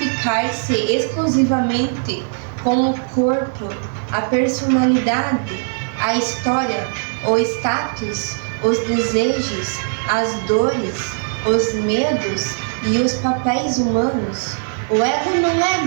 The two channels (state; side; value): silent; left; 66 dB below the other